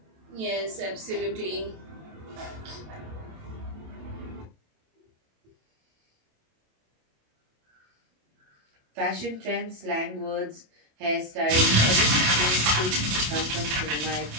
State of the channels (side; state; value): left; late; 27 ms